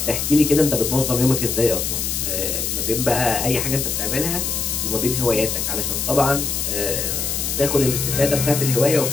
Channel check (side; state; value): left; noise; hiss, 1 dB below the sound